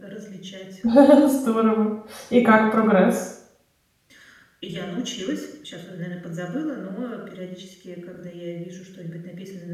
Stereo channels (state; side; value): identical; both; correlation 1.00